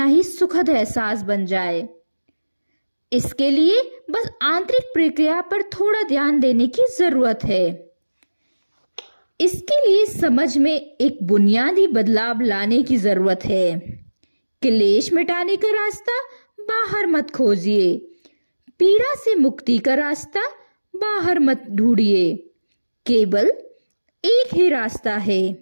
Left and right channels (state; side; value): inverted; both; correlation -1.00